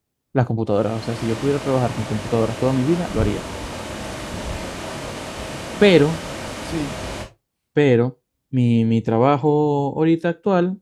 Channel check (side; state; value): both; identical; correlation 1.00